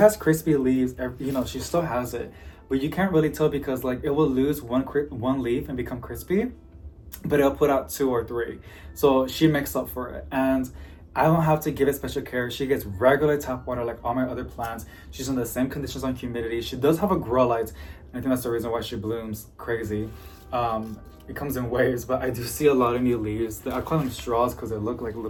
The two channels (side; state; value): both; identical; correlation 1.00